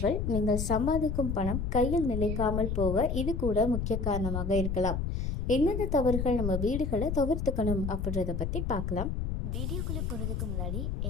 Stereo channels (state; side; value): noise; left; rumble, 2 dB below the sound